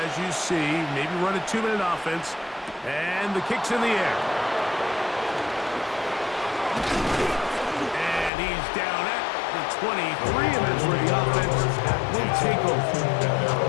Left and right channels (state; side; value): drops out; right; at 8.3 s